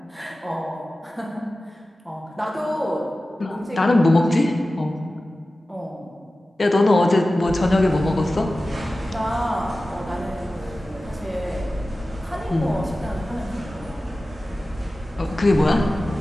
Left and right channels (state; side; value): normal; both; correlation 0.95